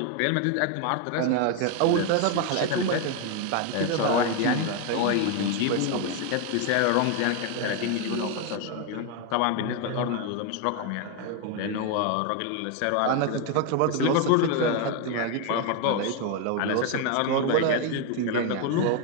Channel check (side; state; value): both; different; correlation 0.01